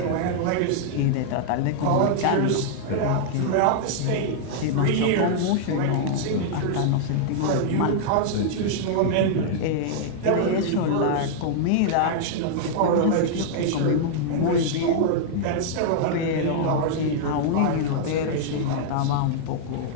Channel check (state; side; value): different; both; correlation -0.01